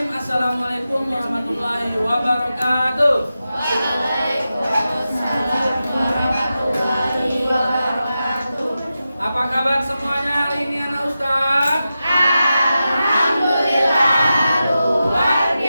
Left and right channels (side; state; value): both; inverted; correlation -0.91